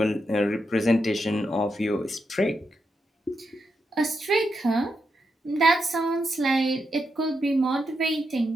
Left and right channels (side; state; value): both; normal; correlation 0.84